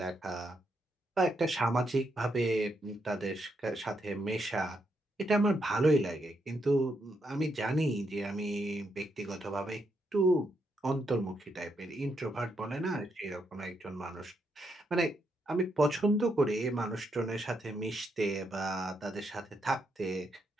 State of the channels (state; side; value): normal; both; correlation 0.79